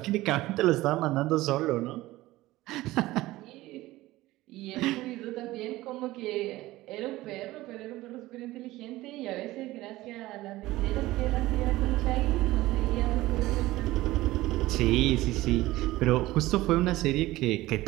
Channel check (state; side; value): quieter; left; 17.7 dB